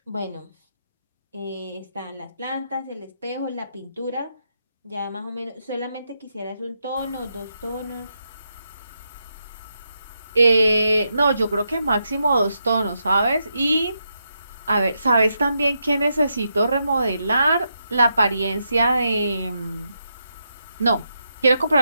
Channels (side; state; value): both; inverted; correlation -0.83